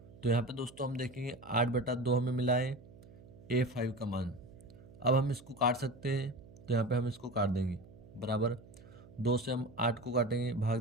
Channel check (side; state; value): right; noise; hum, 20 dB below the sound